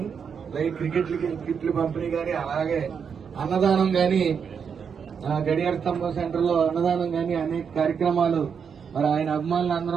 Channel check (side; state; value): left; quieter; 6.7 dB